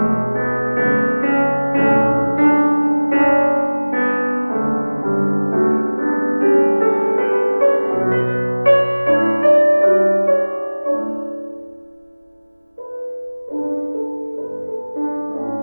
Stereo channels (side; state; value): both; inverted; correlation -1.00